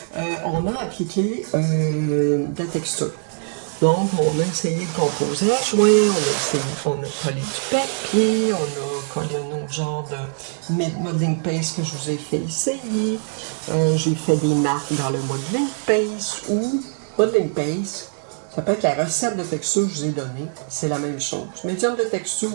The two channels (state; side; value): silent; left; 61 dB below the other